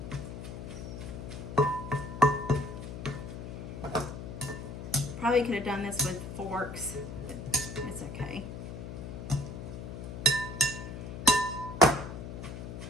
Probably could have done this with forks, but it's okay.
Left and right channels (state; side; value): noise; left; hum, 8 dB below the sound